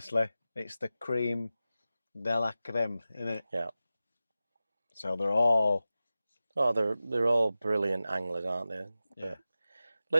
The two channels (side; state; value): both; inverted; correlation -0.95